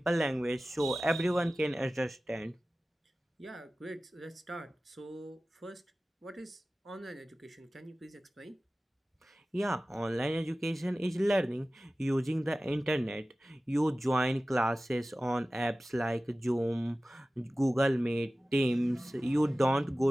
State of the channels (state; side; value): normal; both; correlation 0.96